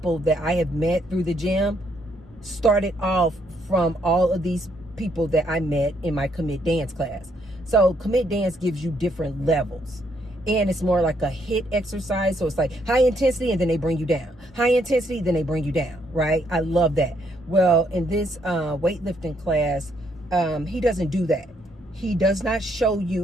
that I have met through the gym started off from all of these people that I met in my commit dance class. So commit dance gives you different levels, and it's more like a HIIT exercise. So it's like high intensity and then they bring you down, high intensity, then they bring you down, right? I love that. Well, in this weightlifting class, he doesn't do that. He does not show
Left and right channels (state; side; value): normal; both; correlation 0.72